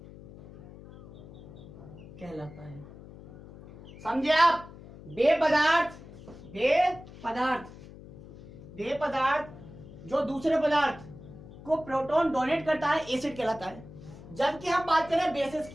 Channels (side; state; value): left; noise; hum, 17 dB below the sound